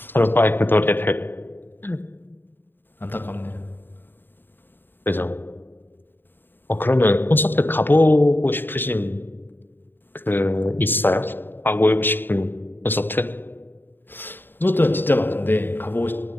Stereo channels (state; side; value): late; right; 0.096 ms